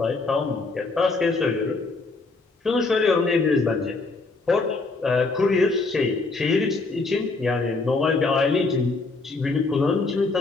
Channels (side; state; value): right; quieter; 3.7 dB